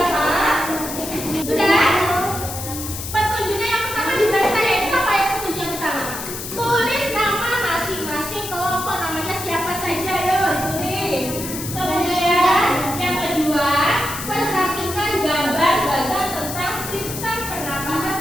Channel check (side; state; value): left; noise; hiss, 8 dB below the sound